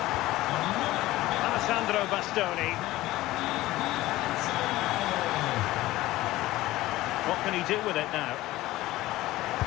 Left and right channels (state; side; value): quieter; right; 17.1 dB